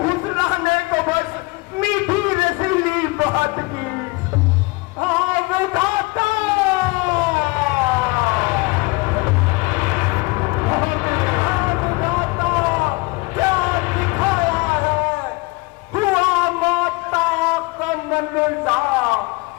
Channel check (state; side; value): quieter; right; 25.2 dB